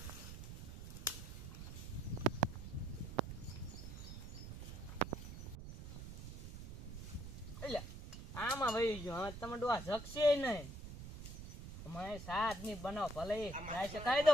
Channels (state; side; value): noise; right; rumble, 10 dB below the sound